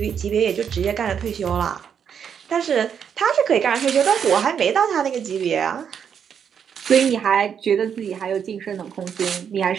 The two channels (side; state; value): left; quieter; 7.7 dB